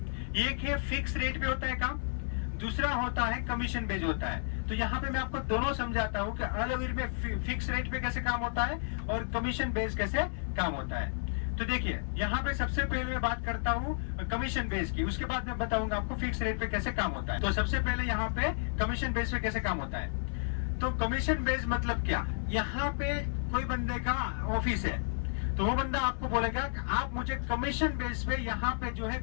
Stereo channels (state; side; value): silent; right; 56 dB below the other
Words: एक है फिक्स रेट पे होता है काम, दूसरा होता है कमीशन बेस्ड होता है। तो यहाँ पे मैं आपको दोनों समझाता हूँ कि अल अवीर में फिक्स रेट पे कैसे काम होता है और कमीशन बेस्ड कैसे काम होता है। तो देखिए यहाँ पे सबसे पहले मैं बात करता हूँ कमीशन बेस की, उसके बाद मैं बताऊंगा आपको फिक्स रेट पे कैसे काम होता है। तो सबसे पहले यहाँ पे कमीशन बेस पे कैसे काम होता है। तो कमीशन बेस मतलब क्या, यहाँ पे कोई बंदे का ऑफिस है तो वो बंदा आपको बोलेगा कि आप मुझे कमीशन बेस पे यहाँ पे जो है